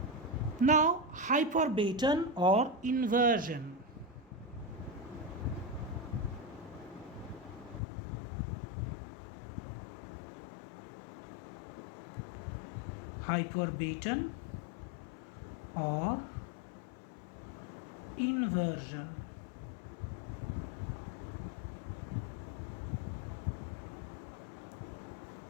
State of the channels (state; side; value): drops out; right; at 7.8 s